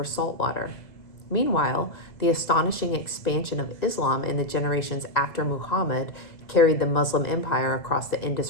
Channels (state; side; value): late; right; 2.0 ms